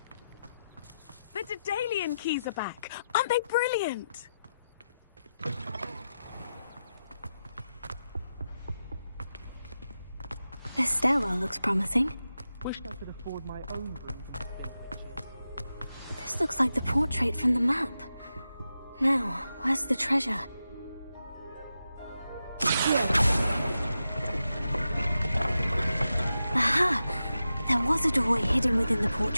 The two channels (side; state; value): both; inverted; correlation -0.90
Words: The Daedalian keys are back. Aren't they brilliant? This stairwell looks promising. Wish I could afford my own broom. This looks like the portrait from the map. Now, where's the treasure? Here. Aha! There was a doorway hidden within the